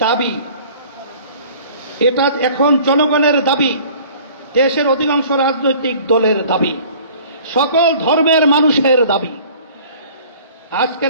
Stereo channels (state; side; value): inverted; both; correlation -0.49